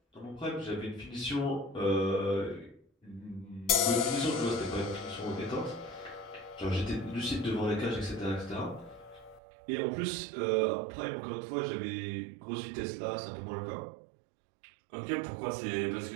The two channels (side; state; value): left; drops out; at 9.4 s